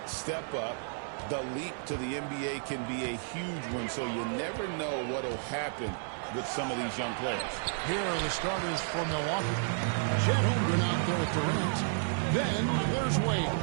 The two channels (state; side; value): silent; left; 57 dB below the other